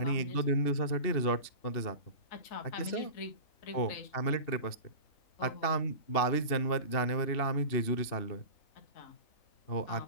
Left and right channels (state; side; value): late; right; 2.8 ms